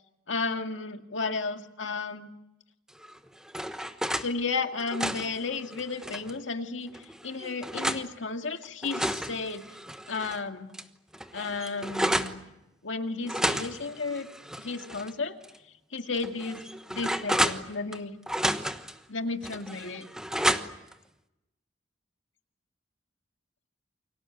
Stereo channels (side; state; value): both; normal; correlation 0.40